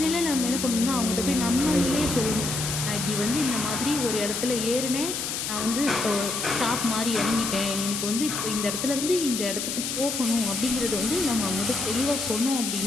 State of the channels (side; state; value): left; noise; hiss, 3 dB below the sound